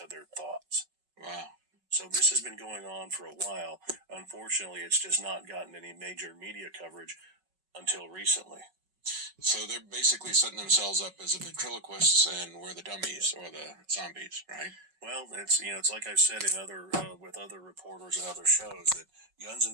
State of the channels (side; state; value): left; late; 5.4 ms